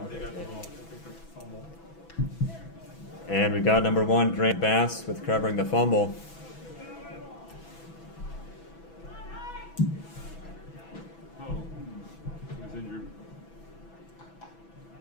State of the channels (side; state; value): right; late; 6.1 ms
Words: They got the ball. They picked up the fumble. And we've got number 1, Grant Bass with covering the fumble. Oh, he was injured.